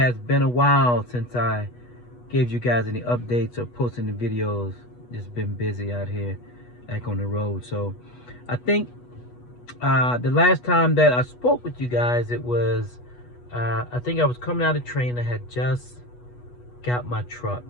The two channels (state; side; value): late; right; 8.2 ms